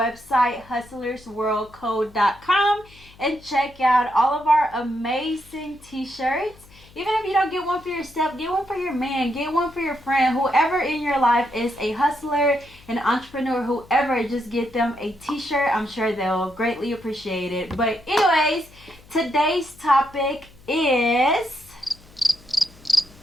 hustlersworldcode.com, and check out all of our amazing t-shirts. Even if you don't get one for yourself, get one for your man, get one for your friend. Whoever in your life is a hustler, an entrepreneur, whoever, just get them a t-shirt. I'm sure they'll greatly appreciate it. But anyways, today's topic is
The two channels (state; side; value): noise; left; hum, 24 dB below the sound